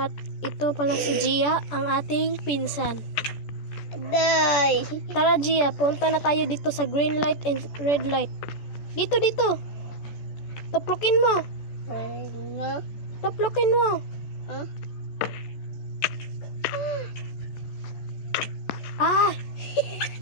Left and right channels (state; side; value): late; right; 14 ms